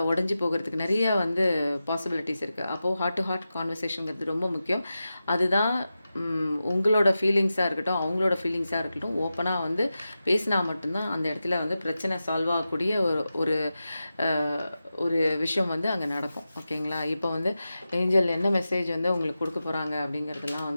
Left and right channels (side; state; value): both; inverted; correlation -0.92